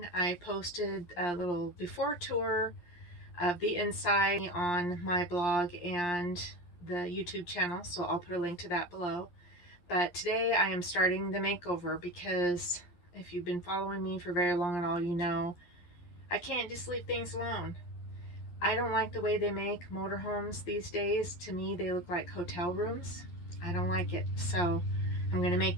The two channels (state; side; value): late; right; 11 ms